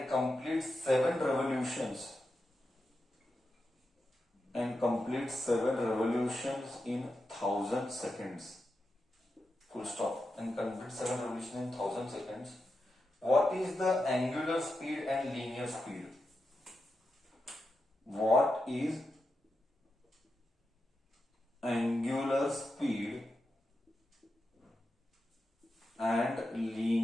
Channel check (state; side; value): normal; both; correlation 0.88